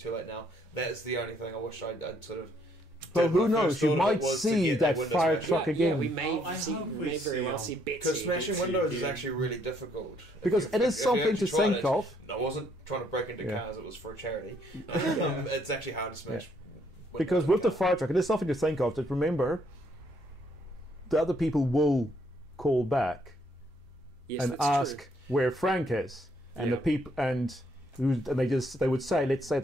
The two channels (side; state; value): both; normal; correlation 0.69